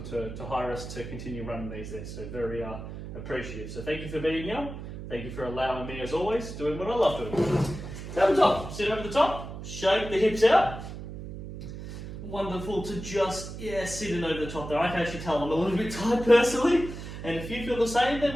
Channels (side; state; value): right; noise; hum, 10 dB below the sound